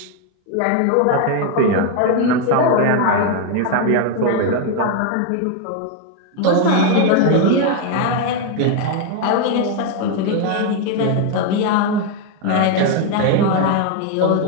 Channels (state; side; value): different; both; correlation 0.01